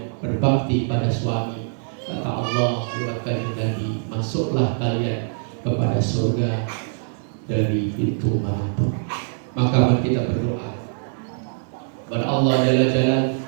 berbakti pada suami, kata Allah lewat kanjeng Nabi, masuklah kalian kepada surga dari pintu manapun. Maka mari kita berdoa kepada Allah Jalla Jalaluhu,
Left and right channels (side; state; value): left; silent; digital silence